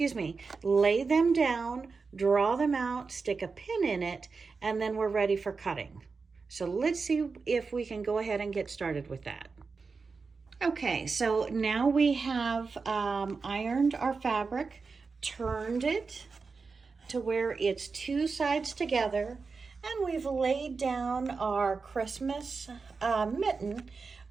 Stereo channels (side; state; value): left; quieter; 4.6 dB